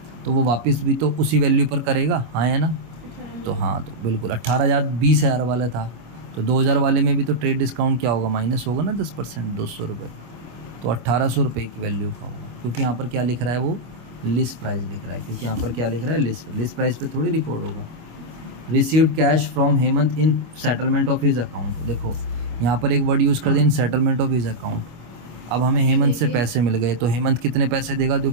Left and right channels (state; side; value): late; left; 25 ms